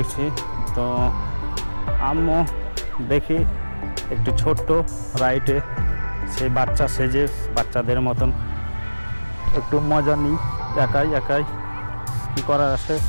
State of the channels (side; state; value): both; inverted; correlation -1.00